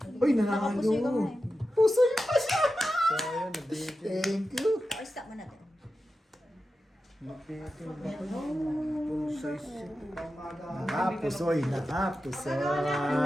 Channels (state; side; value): normal; both; correlation 0.92